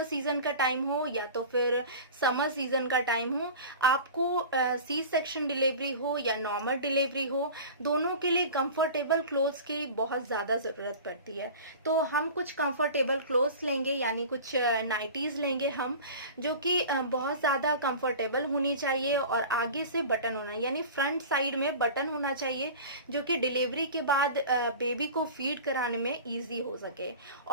सीजन का टाइम हो या तो फिर समर सीजन का टाइम हो, आपको सी सेक्शन डिलीवरी हो या नॉर्मल डिलीवरी हो, दोनों के लिए कंफर्टेबल क्लोथ्स की बहुत ज्यादा जरूरत पड़ती है। तो हम कुछ कंफर्टेबल क्लोथ्स लेंगे, यानी कुछ नाइटीज लेंगे हम, जो कि बहुत ज्यादा कंफर्टेबल होनी चाहिए और आगे से बटन होना, यानी फ्रंट साइड में बटन होना चाहिए, जो कि डिलीवरी के बाद बेबी को फीड कराने में ईजी हो सके।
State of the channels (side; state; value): both; inverted; correlation -0.36